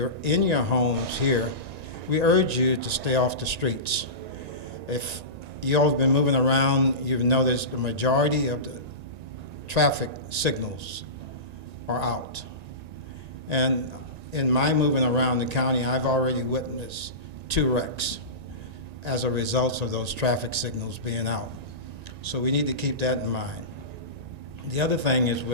in your homes here, we urge you to stay off the streets. If you all have been moving around, you've noticed the majority of the traffic signals are out. And in my moving around the county, I've already witnessed 2 wrecks as a result of those traffic signals being out. So we need to keep that in mind. The other thing is,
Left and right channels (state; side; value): late; left; 1.9 ms